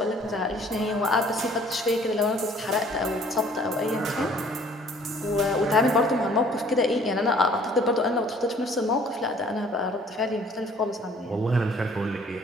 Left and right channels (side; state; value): both; normal; correlation 0.56